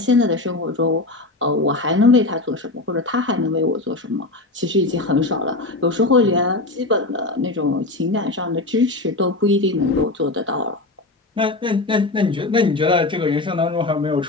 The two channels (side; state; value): right; quieter; 3.0 dB